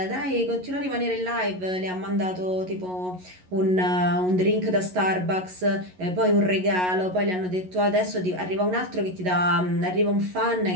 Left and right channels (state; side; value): late; left; 11 ms